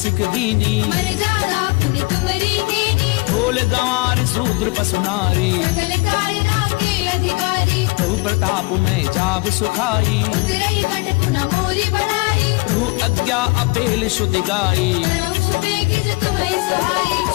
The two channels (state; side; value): quieter; right; 27.1 dB